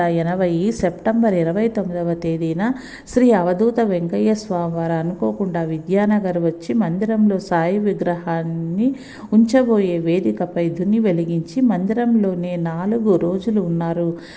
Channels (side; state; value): both; identical; correlation 1.00